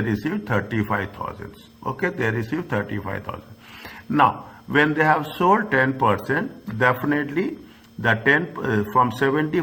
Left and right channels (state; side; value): identical; both; correlation 1.00